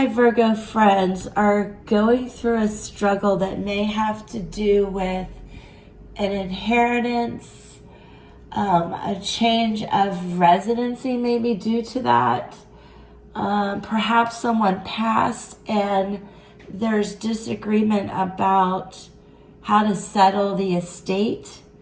Virgo friends are going through a struggle that may have to do with an inheritance, a change of residency maybe due to that. Perhaps someone passed and there's disagreement about how to settle the estate.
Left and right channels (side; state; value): both; identical; correlation 1.00